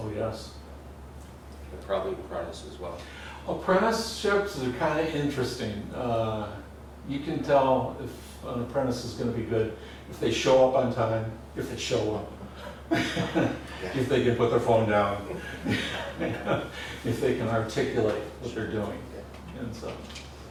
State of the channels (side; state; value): both; identical; correlation 1.00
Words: yes. and probably apprentice as well. Apprenticeships are kind of interesting. You can tell if an apprentice is going to be good if they show up on time, if they show up, if they can put their phone down, if they can articulate what they're doing and so.